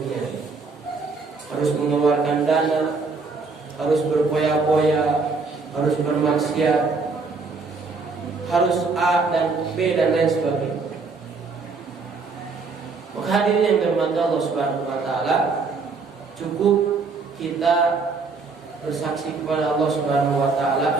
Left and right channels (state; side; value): quieter; left; 4.3 dB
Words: Harus mengeluarkan dana, harus berpoya-poya, harus bermaksiat, harus A dan B dan lain sebagainya. Maka hadirin yang dirahmati Allah Subhanahu wa taala, cukup kita bersaksi kepada Allah Subhanahu wa